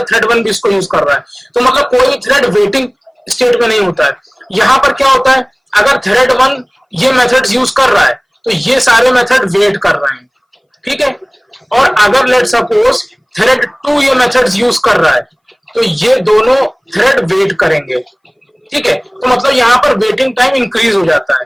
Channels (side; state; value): both; identical; correlation 1.00